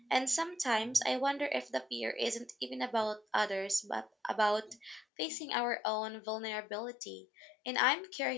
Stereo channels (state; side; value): drops out; right; at 5.1 s